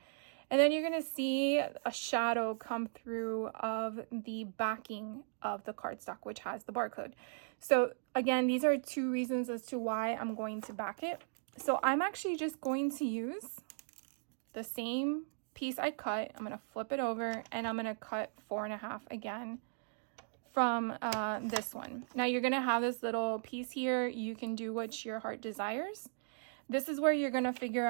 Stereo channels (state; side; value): silent; left; digital silence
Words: And then you're gonna see a shadow come through of the backing of the cardstock, which has the barcode. So again, these are 2 reasons as to why I'm going to back it. So I'm actually just going to use the same piece I cut. I'm going to flip it over and I'm going to cut 4 1/2 again from this one. Now you're going to have this little piece here. You can do what your heart desires. This is where you're going to figure